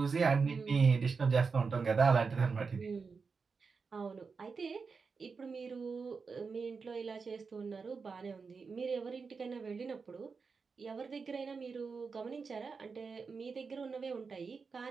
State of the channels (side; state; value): left; quieter; 5.0 dB